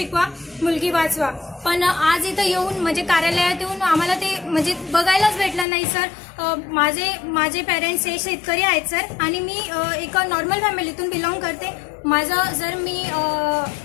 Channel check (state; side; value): drops out; right; at 5.7 s